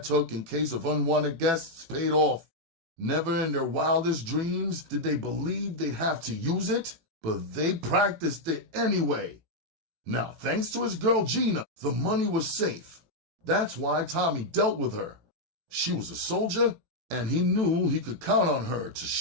took in case of unwanted guests paid off. Never in their wildest dreams did they believe they'd have to use it, but they practiced it anyway. Now, thanks to his girl Gina, the money was safe. That's why Tommy dealt with her. She was a soldier, and he knew he could count on her to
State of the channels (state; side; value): late; left; 18 ms